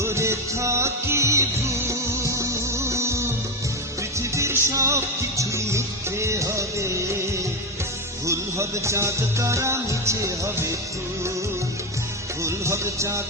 থাকি ভুল, পৃথিবীর সব কিছুই মিথ্যে হবে, ভুল হবে চাঁদ তারা মিছে হবে ফুল, ভুল হবে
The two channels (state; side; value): normal; both; correlation 0.13